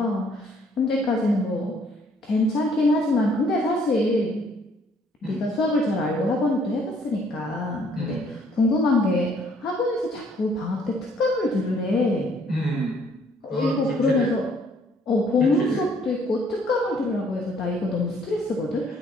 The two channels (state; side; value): normal; both; correlation 0.63